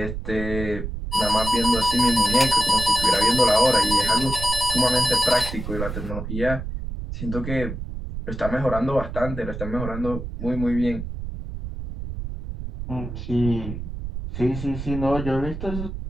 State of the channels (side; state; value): right; noise; rumble, 7 dB below the sound